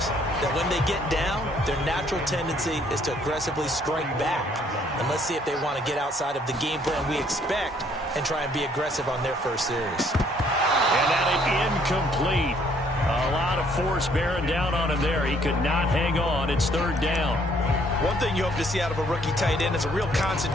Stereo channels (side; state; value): both; normal; correlation 0.64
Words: that when they get down, their natural tendency is to aggressively strike back. And let's see if they want to get outside of the game plan we expect and try and be aggressive on their first series. And that incomplete. A lot of force bearing down on him there. He could not hang on. It's 3rd down. One thing you hope to see out of a rookie tight end is a real